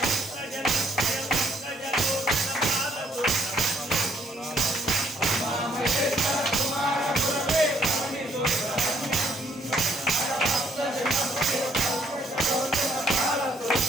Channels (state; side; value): normal; both; correlation 0.67